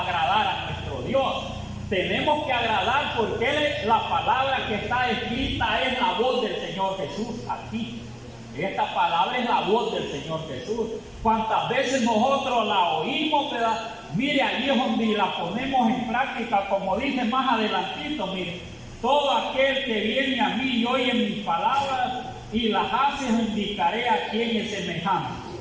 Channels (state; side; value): identical; both; correlation 1.00